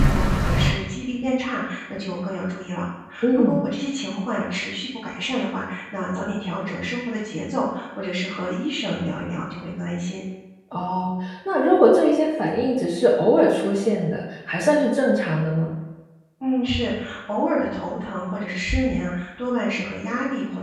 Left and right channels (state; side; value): identical; both; correlation 1.00